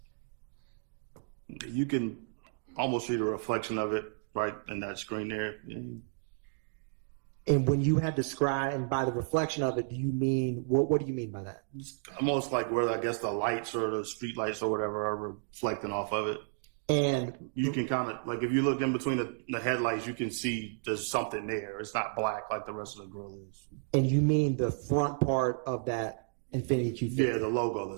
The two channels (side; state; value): left; silent; digital silence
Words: You can almost see the reflection of it right in that screen there. And when you had described, and by the reflection of it, do you mean, what do you mean by that? It's almost like where I guess the lights or the street lights or whatever are reflecting off of it. And You can kind of, like, if you look in between the headlights, you can see there's something there. It's not black like the rest of the grill is. and you mean the front part of that Infiniti Q50? Yeah, the logo